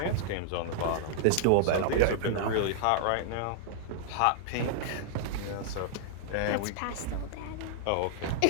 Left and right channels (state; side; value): different; both; correlation -0.01